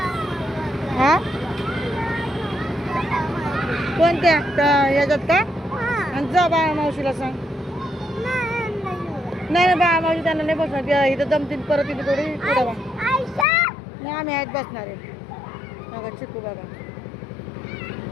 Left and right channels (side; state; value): right; drops out; at 13.5 s